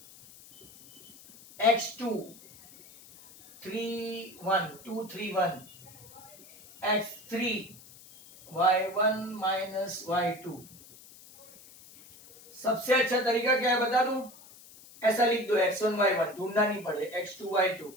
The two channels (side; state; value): left; noise; hiss, 21 dB below the sound